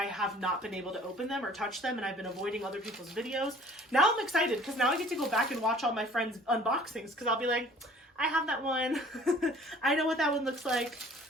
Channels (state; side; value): normal; both; correlation 0.52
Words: have not been able to open them or touch them, and I've been avoiding other people's videos. Now I'm excited because now I get to go back and watch all my friends' unboxings because I'll be like, I have that one. I know what that one looks like.